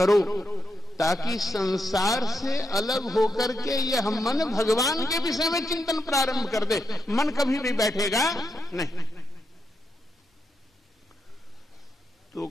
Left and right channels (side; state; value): both; normal; correlation 0.84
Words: ताकि संसार से अलग होकर के यह मन भगवान के विषय में चिंतन प्रारंभ कर दे। मन कभी भी बैठेगा नहीं। तो